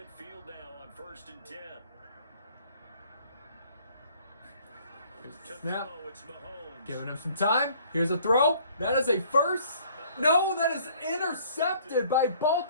now on 1st and 10. Here's the snap. Giving him some time. Here's a throw. That is a first. No, that is intercepted by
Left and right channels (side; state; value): both; inverted; correlation -0.58